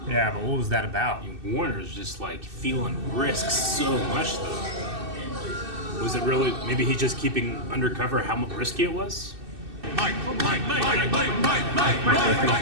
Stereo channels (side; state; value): left; late; 2.6 ms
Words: Yeah, but what was that about? Warner's just like feeling risk so much though. Was it really? Maybe he's just keeping undercover how risky it was. Mike, Mike, Mike, Mike, Mike, Mike, Mike, Mike,